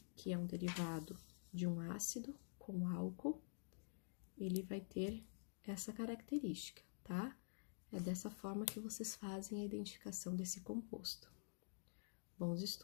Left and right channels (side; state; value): right; silent; digital silence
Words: que é um derivado de um ácido com álcool, ele vai ter essa característica, tá? É dessa forma que vocês fazem a identificação desse composto. Bons